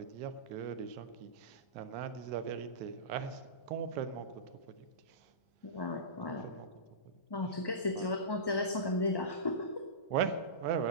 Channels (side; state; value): right; late; 1.1 ms